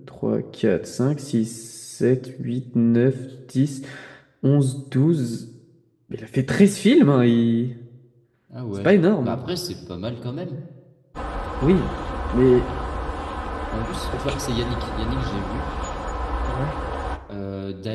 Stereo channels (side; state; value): both; identical; correlation 1.00